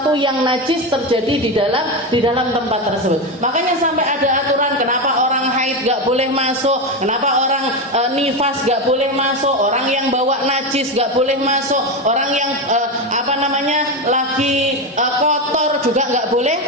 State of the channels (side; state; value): both; normal; correlation 0.15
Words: yang najis terjadi di dalam tempat tersebut. Makanya sampai ada aturan kenapa orang haid gak boleh masuk, kenapa orang nifas gak boleh masuk, orang yang bawa najis gak boleh masuk, orang yang lagi kotor juga gak